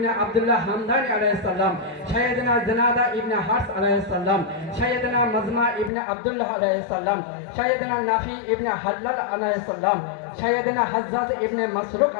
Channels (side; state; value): right; drops out; at 5.9 s